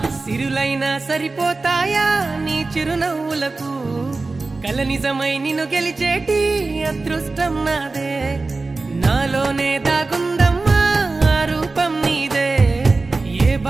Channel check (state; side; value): quieter; left; 3.6 dB